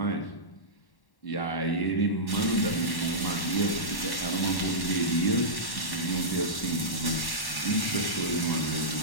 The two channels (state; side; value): late; right; 1.1 ms